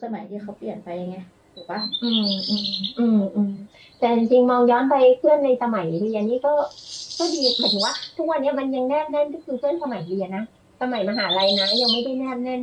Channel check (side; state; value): both; identical; correlation 1.00